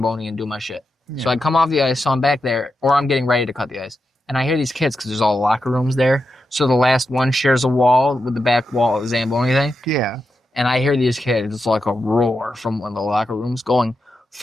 and do my shit. Yeah. So I come off the ice, so I'm back there, or I'm getting ready to cut the ice. And I hear these kids, because there's all the locker rooms there. So the last one shares a wall with the back wall of the Zamboni thing. Yeah. And I hear these kids, it's like a roar from one of the locker rooms going,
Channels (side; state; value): both; normal; correlation 0.88